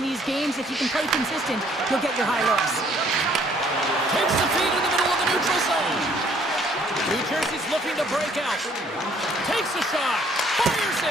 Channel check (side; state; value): both; normal; correlation 0.62